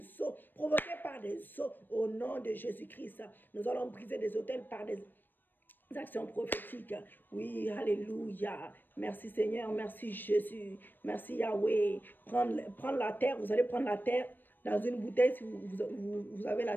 eaux, provoqué par des eaux, au nom de Jésus-Christ. Nous allons briser des autels par des actions prophétiques. Oui, alléluia. Merci Seigneur, merci Jésus, merci Yahweh. Prendre la terre, vous allez prendre la terre dans une bouteille. Si vous avez la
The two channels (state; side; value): late; right; 0.092 ms